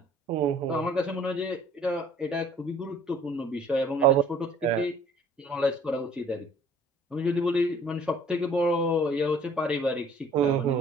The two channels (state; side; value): normal; both; correlation 0.55